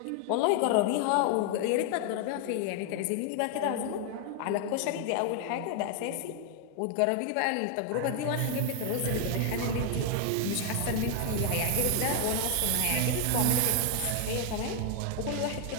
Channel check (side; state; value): both; different; correlation 0.00